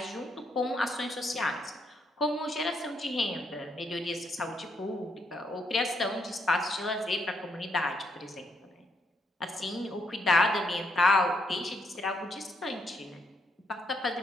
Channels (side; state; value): both; normal; correlation 0.75